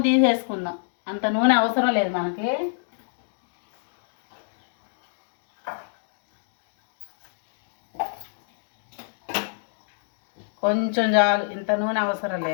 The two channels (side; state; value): right; silent; digital silence